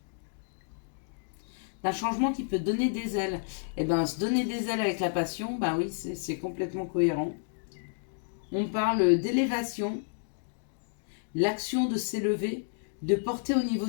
D'un changement qui peut donner des ailes. Et bien, se donner des ailes avec la passion, ben oui, c'est complètement cohérent. On parle d'élévation, l'action de s'élever, de porter au niveau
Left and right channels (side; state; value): right; silent; digital silence